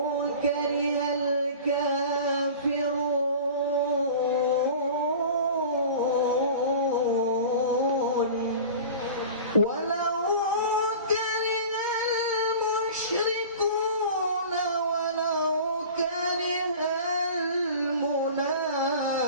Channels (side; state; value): both; inverted; correlation -0.38